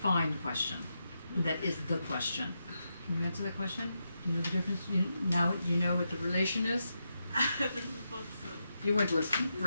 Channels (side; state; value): both; inverted; correlation -0.86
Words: question. That is the question. Can you answer that question? Do you know the difference? Now you know what the relation is? You weren't listening.